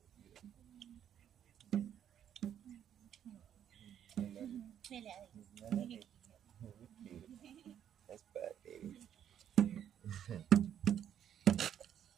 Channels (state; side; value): quieter; left; 9.7 dB